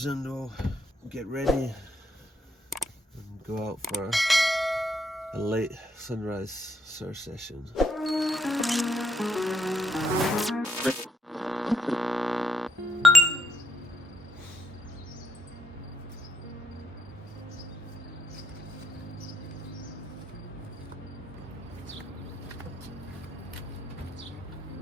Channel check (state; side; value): normal; both; correlation 0.77